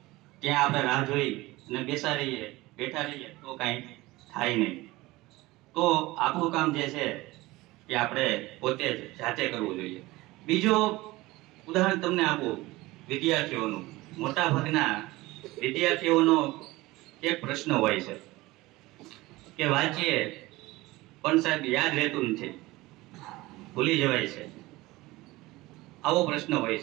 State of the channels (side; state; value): left; quieter; 19.9 dB